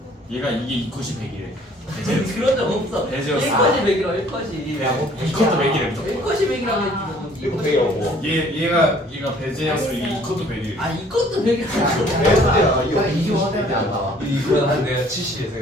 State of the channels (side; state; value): both; normal; correlation 0.57